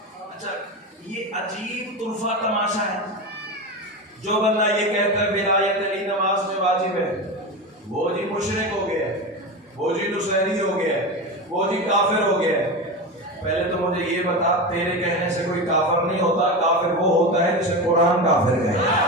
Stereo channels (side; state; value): both; normal; correlation 0.22